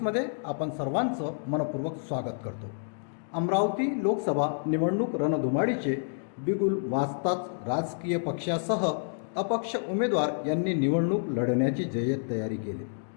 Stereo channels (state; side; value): silent; right; digital silence